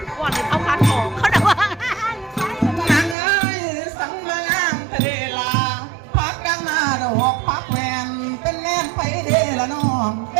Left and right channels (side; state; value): left; drops out; at 3.2 s